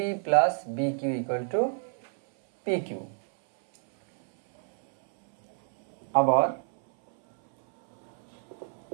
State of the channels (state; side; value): silent; left; 59 dB below the other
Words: plus B Q equal to P Q. আবার